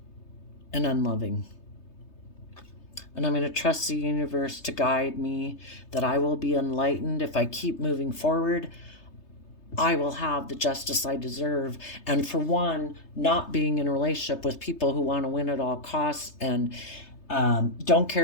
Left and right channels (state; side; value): late; right; 3.3 ms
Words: and unloving. And I'm going to trust the universe to guide me, that I will be enlightened. If I keep moving forward, I will have the justice I deserve. And for one, not being in a relationship with people who want to win at all costs and don't